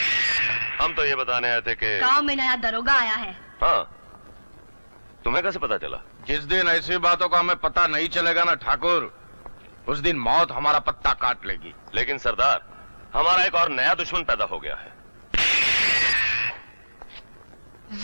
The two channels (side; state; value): both; inverted; correlation -1.00